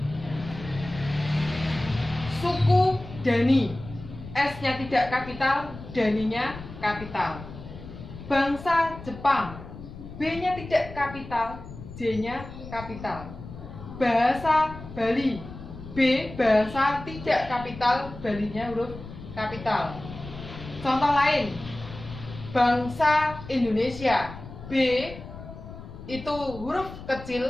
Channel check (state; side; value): noise; left; rumble, 13 dB below the sound